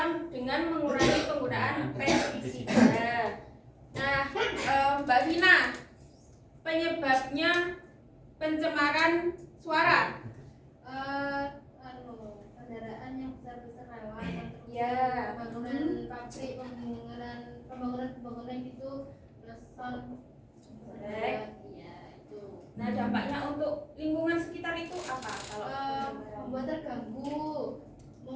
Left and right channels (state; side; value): identical; both; correlation 1.00